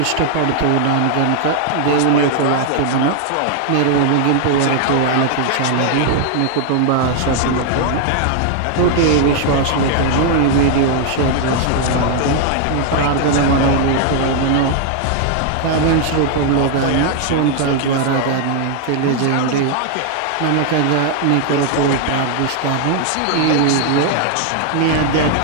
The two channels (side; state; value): both; different; correlation 0.00